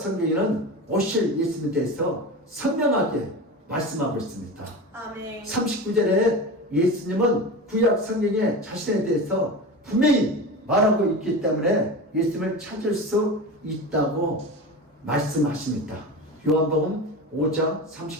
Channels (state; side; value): normal; both; correlation 0.28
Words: 오실 예수님에 대해서 선명하게 말씀하고 있습니다. 아멘. 39절에 예수님은 구약 성경에 자신에 대해서 분명히 말하고 있기 때문에 예수님을 찾을 수 있다고 말씀하십니다. 요한복음 5장